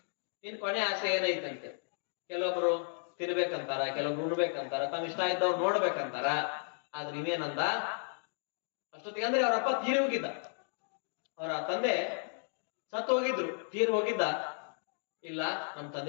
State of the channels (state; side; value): silent; right; 55 dB below the other